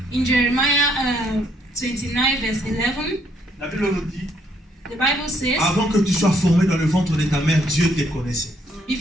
in Jeremiah 29, verse 11, la Bible nous dit, the Bible says, avant que tu sois formé dans le ventre de ta mère, Dieu te connaissait.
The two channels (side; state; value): both; normal; correlation 0.69